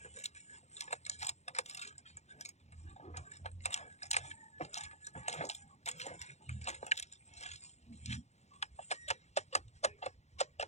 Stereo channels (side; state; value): right; late; 0.32 ms